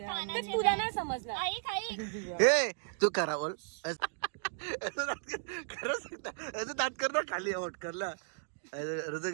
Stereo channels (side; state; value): left; silent; digital silence